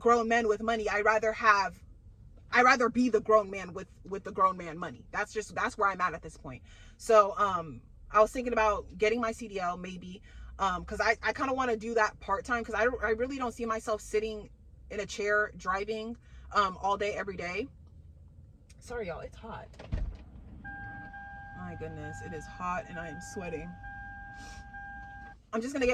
men with money, I'd rather be the grown man with the grown man money. That's where I'm at this point. So, I was thinking about getting my CDL maybe, because I kind of want to do that part-time, because I really don't see myself sitting in a chair driving all day, every day. Sorry, y'all, it's hot. My goodness, it is hot and I am sweating. I'm just going to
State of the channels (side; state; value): both; identical; correlation 1.00